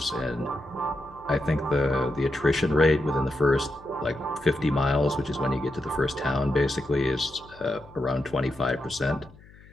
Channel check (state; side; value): noise; left; hum, 23 dB below the sound